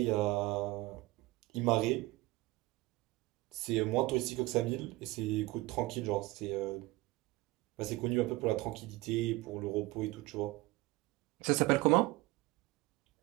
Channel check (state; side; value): quieter; left; 20.5 dB